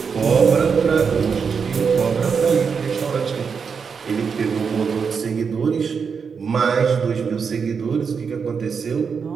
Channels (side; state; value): left; quieter; 6.0 dB